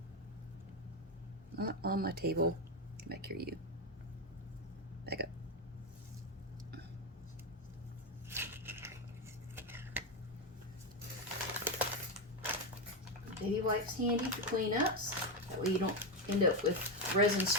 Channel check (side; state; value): both; normal; correlation 0.10